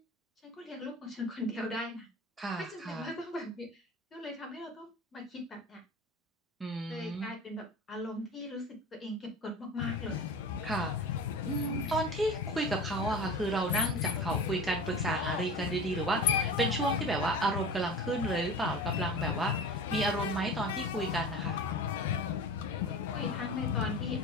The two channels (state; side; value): normal; both; correlation 0.33